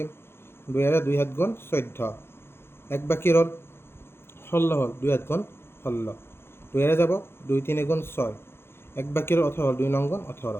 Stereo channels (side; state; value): right; late; 0.11 ms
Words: 2ৰে 2 7 গুণ 14, 1 বাকী ৰ'ল 16 হ'ল, 2 7 গুণ 16, 2ৰে যাব 2 3 গুণ 6, 1 বাকী ৰ'ল 18 হ'ল, 2 9 গুণ